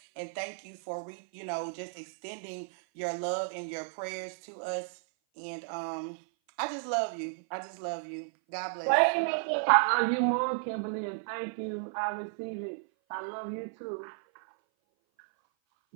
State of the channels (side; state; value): left; silent; 56 dB below the other